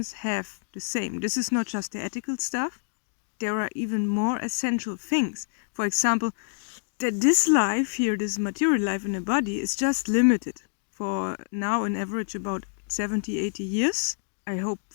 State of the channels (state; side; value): silent; right; digital silence